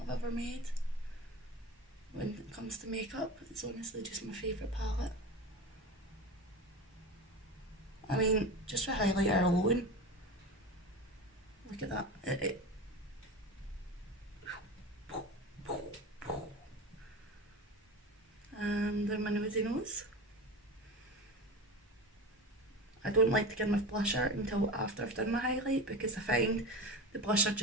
I've ever made. When it comes to makeup, it's honestly just my favourite palette. I mean, just for highlighter alone, look at that. And then my nosy nose. I don't like to get my blusher until after I've done my highlight, because I find the blusher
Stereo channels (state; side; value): normal; both; correlation 0.28